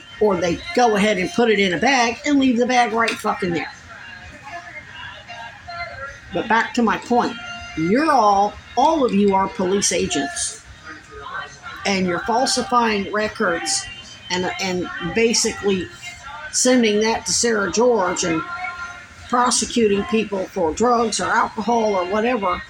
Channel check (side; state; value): both; identical; correlation 1.00